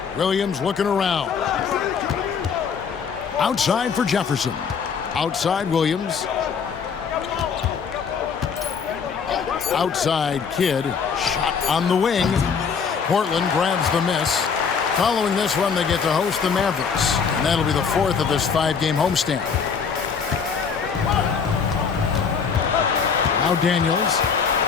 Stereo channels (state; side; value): quieter; right; 6.2 dB